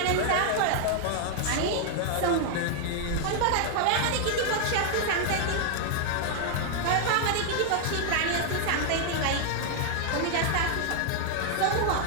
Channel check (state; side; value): different; both; correlation 0.00